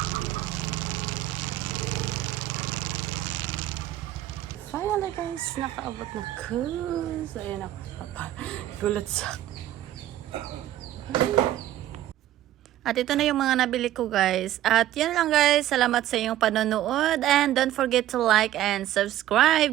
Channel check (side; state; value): left; quieter; 13.4 dB